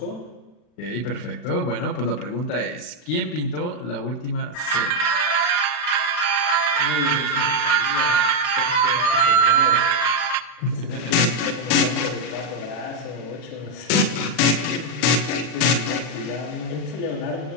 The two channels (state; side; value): late; right; 40 ms